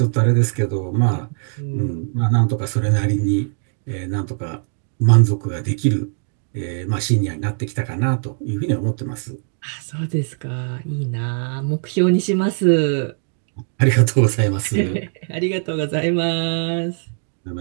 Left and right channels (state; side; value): silent; left; 59 dB below the other